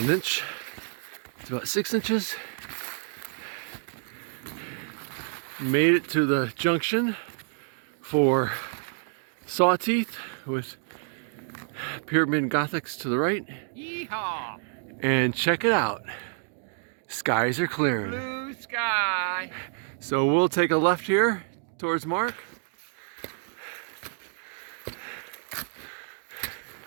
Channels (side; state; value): left; silent; 55 dB below the other